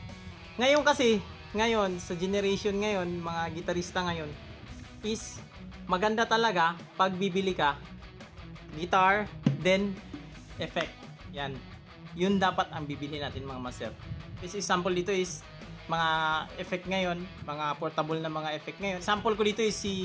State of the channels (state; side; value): identical; both; correlation 1.00